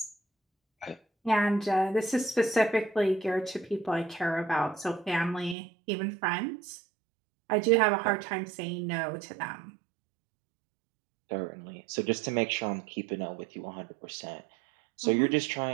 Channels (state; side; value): drops out; left; at 5.6 s